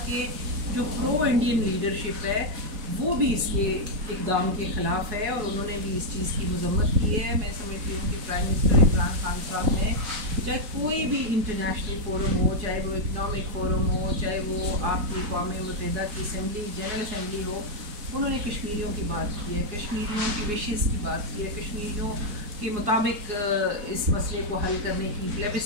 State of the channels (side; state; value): left; late; 4.8 ms